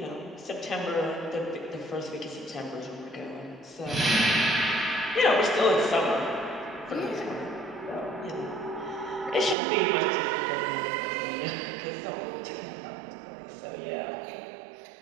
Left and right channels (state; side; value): drops out; left; at 9.6 s